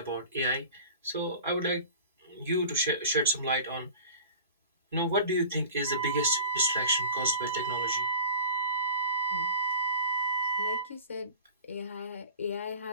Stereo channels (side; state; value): both; inverted; correlation -0.38